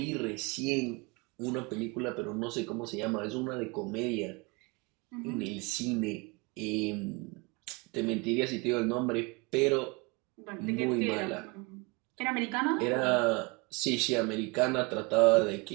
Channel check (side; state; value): left; quieter; 27.4 dB